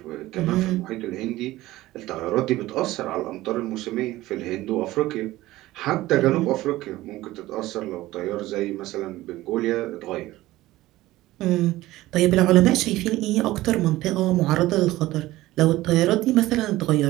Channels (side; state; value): left; quieter; 17.0 dB